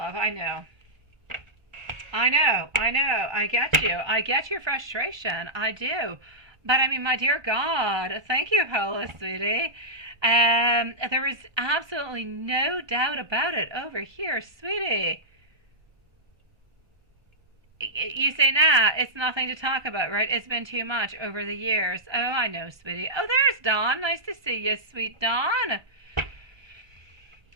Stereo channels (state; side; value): late; left; 1.4 ms